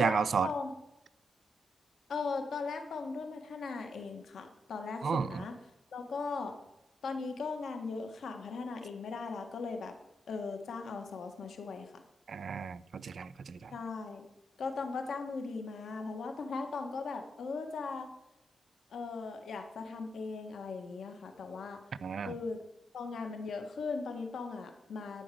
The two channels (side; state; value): both; normal; correlation 0.81